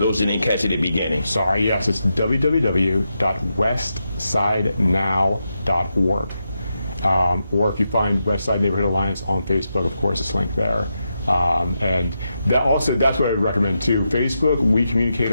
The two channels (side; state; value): both; inverted; correlation -0.86